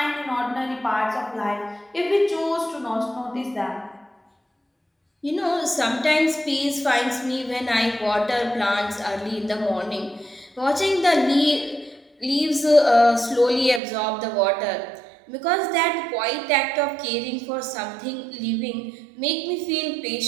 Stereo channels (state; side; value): drops out; left; at 13.8 s